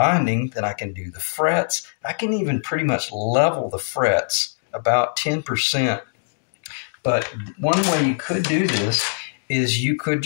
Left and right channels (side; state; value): right; silent; digital silence